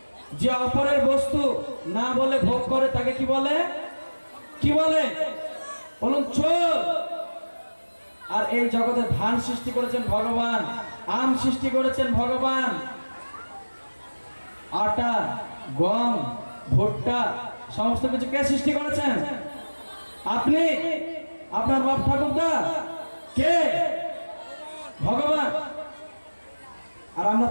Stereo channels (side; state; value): both; inverted; correlation -1.00